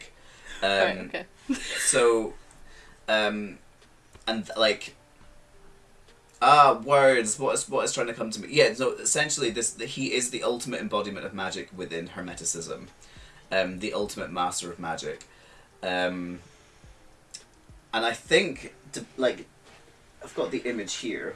Right, okay. So, and like, words. What is trying to come to me? Yeah. So essentially, he is the ultimate embodiment of magic within Hermeticism, the ultimate master of magic, and I think I've got the image here.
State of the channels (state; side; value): identical; both; correlation 1.00